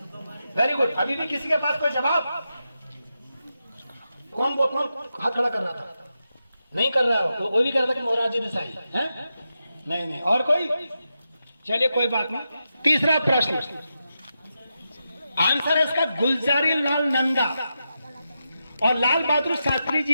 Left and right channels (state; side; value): inverted; both; correlation -0.88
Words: Very good. अभी भी किसी के पास कोई जवाब? कौन हाथ खड़ा कर रहा था? नहीं कर रहा हो तो कोई भी कह रहा था कि मोरारजी देसाई है? नहीं नहीं, और कोई? चलिए कोई बात नहीं। तीसरा प्रश्न, आंसर है इसका गुलजारी लाल नंदा। और लाल बहादुर शास्त्री